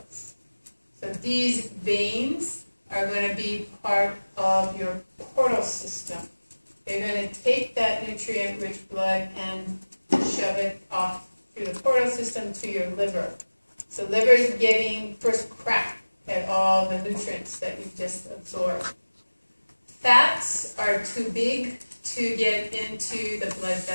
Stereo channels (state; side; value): inverted; both; correlation -1.00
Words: So these veins are going to be part of your portal system. They're going to take that nutrient-rich blood and shove it off through the portal system to your liver. So liver is getting first crack at all the nutrients that you've just absorbed. Fats are too big to get into the blood